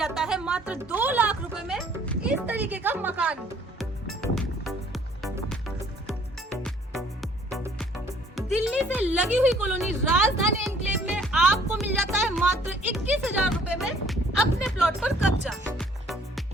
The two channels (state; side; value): normal; both; correlation 0.59